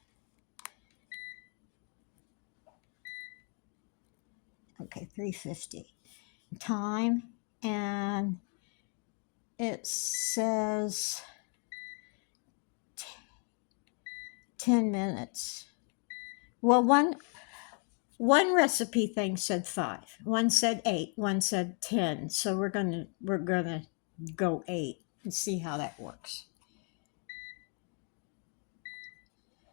350. Time, and it says 10 minutes. Well, one recipe thing said 5, one said 8, one said 10. So we're gonna go 8 and see how that works.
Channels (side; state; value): right; quieter; 39.9 dB